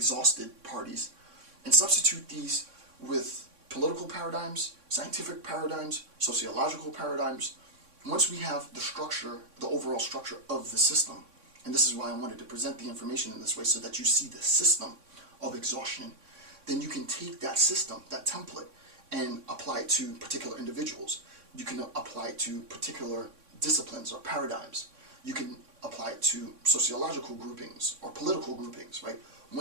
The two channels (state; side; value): late; left; 3.6 ms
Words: parties, and substitute these with political paradigms, scientific paradigms, sociological paradigms. Once we have the structure, the overall structure of the system, and this is why I wanted to present the information in this way so that you see the system of exhaustion, then you can take that system, that template, and apply it to particular individuals. You can apply it to particular disciplines or paradigms. You can apply it to sociological groupings or political groupings, right?